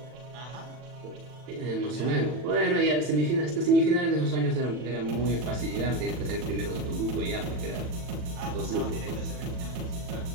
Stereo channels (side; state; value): left; late; 40 ms